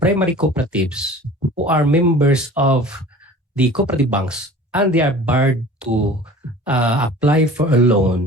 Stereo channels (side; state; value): both; normal; correlation 0.42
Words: cooperatives who are members of the cooperative banks and they are barred to apply for a